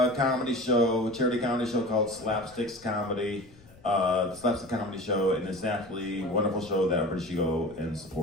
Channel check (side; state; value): left; noise; rumble, 24 dB below the sound